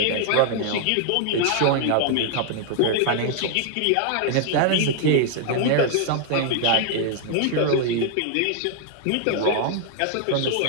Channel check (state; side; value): different; both; correlation 0.00